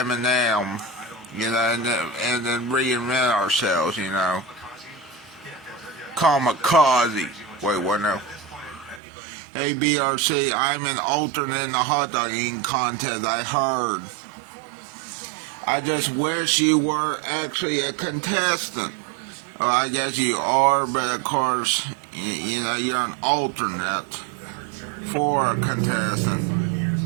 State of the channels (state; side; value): drops out; left; at 9.0 s